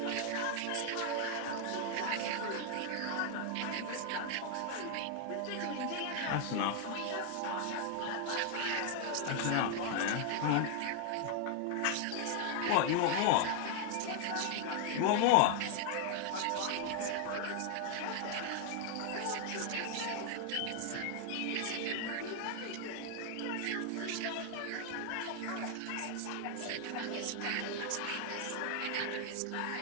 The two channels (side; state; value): both; different; correlation 0.00